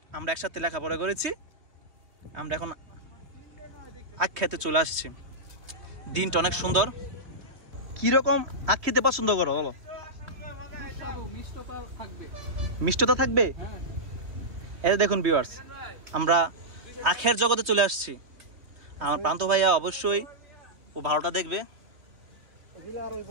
আমরা একসাথে লেখাপড়া করেছি। আমরা এখন আখ খেতে চলে আসছি। দিনটা অনেক সুন্দর। কিরকম আখ খেতে পছন্দ করো বলো? মিষ্টতা থাকবে। এই দেখুন ভিউয়ার্স, আমরা আখের জগতে চলে আসছি। আমার প্রান্ত ভাইয়া অবশ্যই ও ভালোটা দেখবে।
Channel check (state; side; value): late; left; 3.2 ms